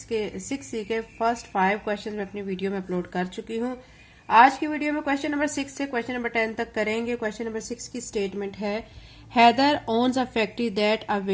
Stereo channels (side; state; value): both; identical; correlation 1.00